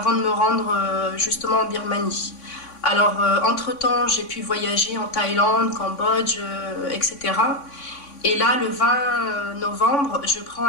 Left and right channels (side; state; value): right; late; 3.5 ms